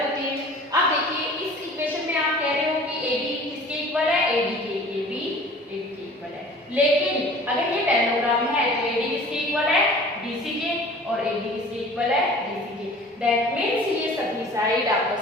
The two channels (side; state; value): both; normal; correlation 0.46